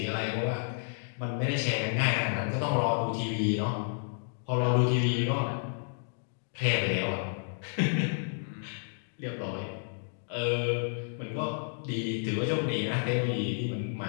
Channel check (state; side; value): silent; right; digital silence